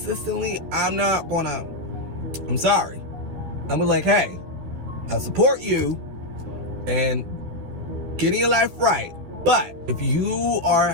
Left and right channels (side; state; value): left; late; 12 ms